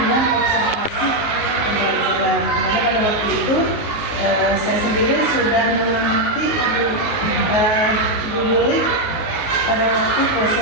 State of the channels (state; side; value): late; right; 19 ms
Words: observasi pembelajaran. Karena pada waktu itu saya sendiri sudah mengerti Bu Yuli pada waktu